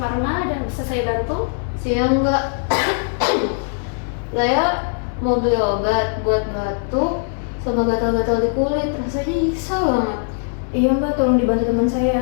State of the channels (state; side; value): silent; right; 66 dB below the other